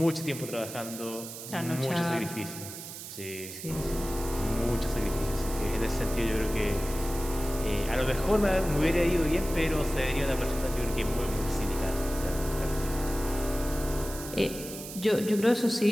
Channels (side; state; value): right; noise; hiss, 11 dB below the sound